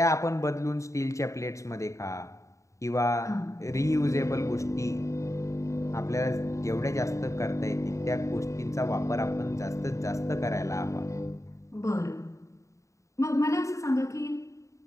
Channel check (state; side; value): late; right; 0.15 ms